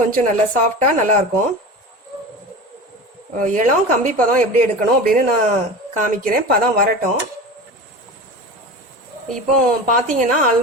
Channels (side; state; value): both; normal; correlation 0.31